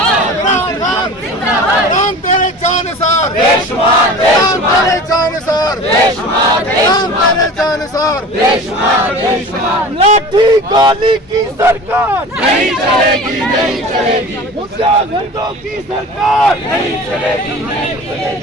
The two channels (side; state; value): both; normal; correlation 0.38